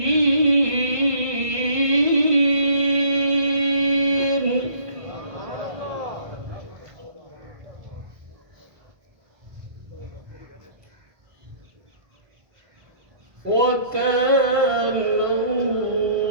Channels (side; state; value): left; late; 1.6 ms